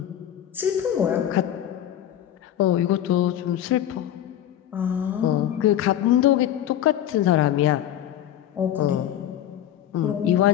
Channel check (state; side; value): quieter; right; 11.3 dB